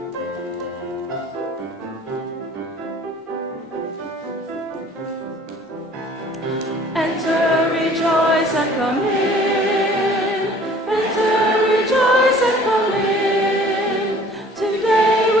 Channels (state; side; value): normal; both; correlation 0.51